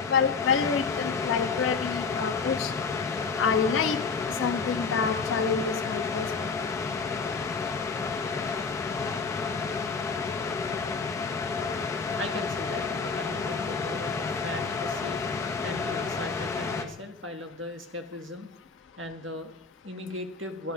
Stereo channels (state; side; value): quieter; right; 4.9 dB